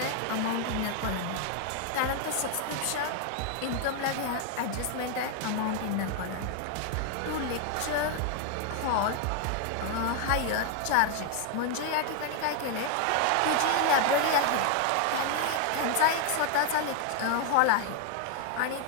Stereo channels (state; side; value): different; both; correlation 0.00